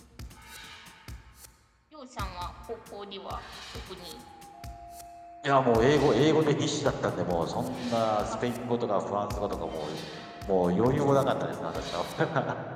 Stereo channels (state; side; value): identical; both; correlation 1.00